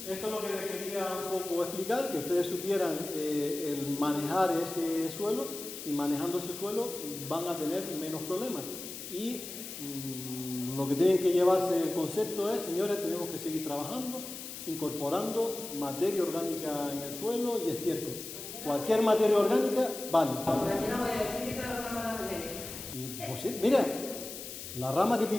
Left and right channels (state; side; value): noise; left; hiss, 10 dB below the sound